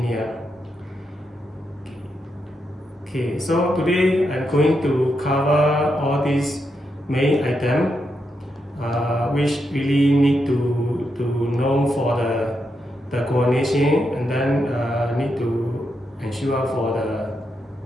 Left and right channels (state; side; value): normal; both; correlation 0.83